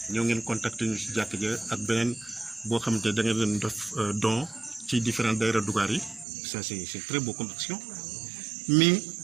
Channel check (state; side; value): drops out; left; at 6.2 s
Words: ñoo ngeen contacter ñu si jàkk ja ak beneen boo xamante da ngeen leen def don ci différentes daïra Dougar yi ça c'est très beau comme action mais